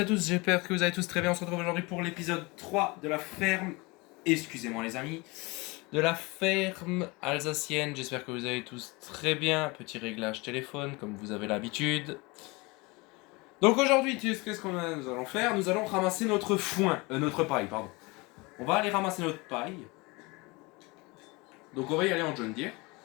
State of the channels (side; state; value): right; quieter; 25.4 dB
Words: à tous, j'espère que vous allez tous très bien. On se retrouve aujourd'hui pour l'épisode 3 de la ferme, excusez-moi les amis, de la ferme alsacienne. J'espère que vous allez tous très bien. Petit réglage téléphone comme vous avez l'habitude. Donc aujourd'hui, qu'est-ce qu'on nous allons faire? Nous allons ramasser notre foin, notre paille, pardon. On va aller ramasser notre paille. Donc on va y aller en John Deere.